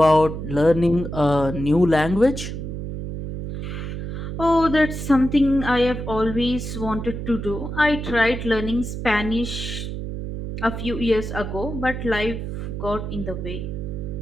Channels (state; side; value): noise; right; hum, 6 dB below the sound